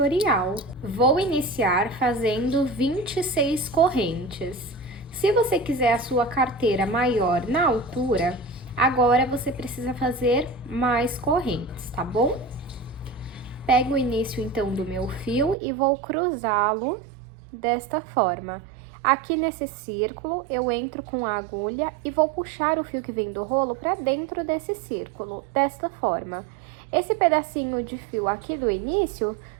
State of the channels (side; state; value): left; drops out; at 15.6 s